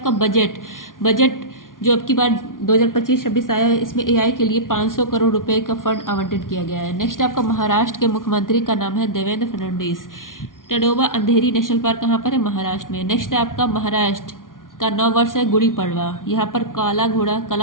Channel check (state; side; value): late; right; 0.89 ms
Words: बजट जो अब की बार 2025-26 आया है, इसमें AI के लिए 500 करोड़ रुपए का फंड आवंटित किया गया है। नेक्स्ट आपका महाराष्ट्र के मुख्यमंत्री का नाम है देवेंद्र फडणवीस। टडोबा अंधेरी नेशनल पार्क कहाँ पर है? महाराष्ट्र में। नेक्स्ट है आपका महाराष्ट्र का नववर्ष है गुड़ी पड़वा। यहाँ पर काला घोड़ा